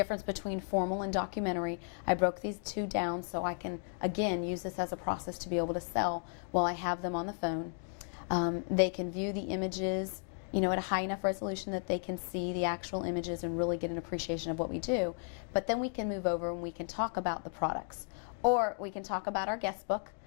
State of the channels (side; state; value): right; silent; 55 dB below the other